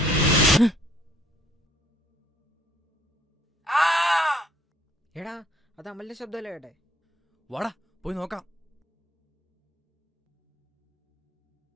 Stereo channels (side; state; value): both; normal; correlation 0.63